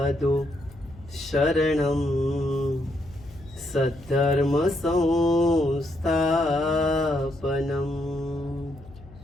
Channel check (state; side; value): noise; left; hum, 20 dB below the sound